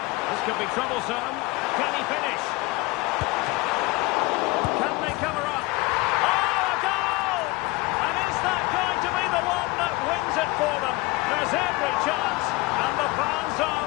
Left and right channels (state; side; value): quieter; right; 22.7 dB